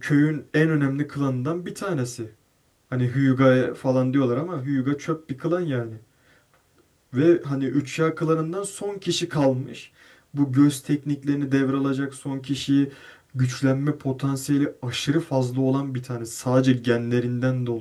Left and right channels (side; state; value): both; identical; correlation 1.00